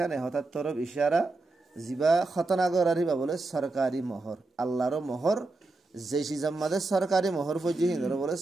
হঠাৎ তরফ ইশারা জিবা খতনা গরারিবা বলে সরকারি মোহর আল্লাহর মোহর যে সিজাম্মাদে সরকারি মোহর ফজি হিন্দর বলে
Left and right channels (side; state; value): left; quieter; 3.2 dB